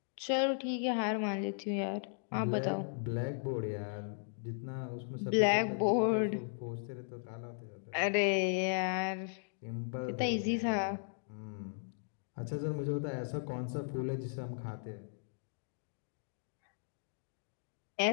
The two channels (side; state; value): right; silent; digital silence